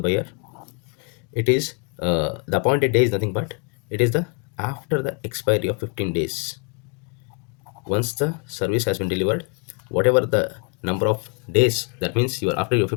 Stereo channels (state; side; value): quieter; right; 34.5 dB